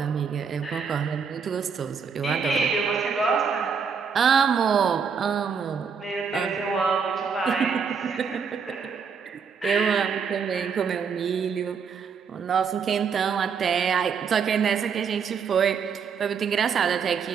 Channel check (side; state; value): left; quieter; 6.2 dB